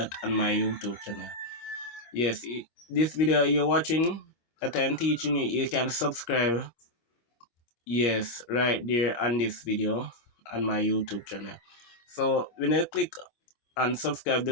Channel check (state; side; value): late; right; 26 ms